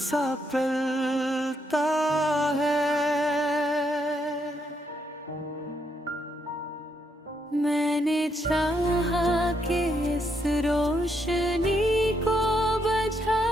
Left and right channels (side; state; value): both; normal; correlation 0.77